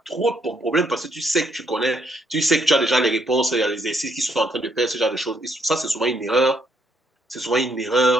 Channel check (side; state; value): both; normal; correlation 0.72